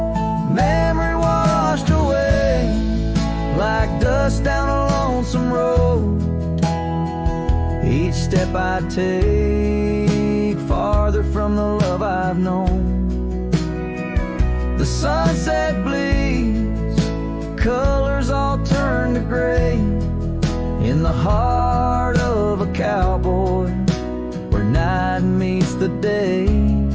washed away like dust down a lonesome road. Each step I take farther from the love I've known. The sunset bleeds, colors all turn to gray in the heart of a cowboy where night meets the day.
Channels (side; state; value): both; identical; correlation 1.00